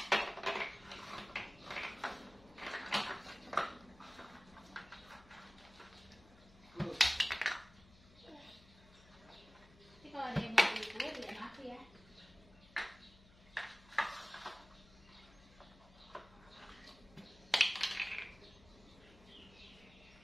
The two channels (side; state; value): left; noise; hum, 24 dB below the sound